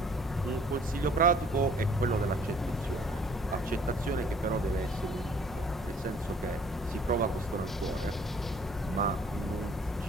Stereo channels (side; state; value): both; normal; correlation 0.57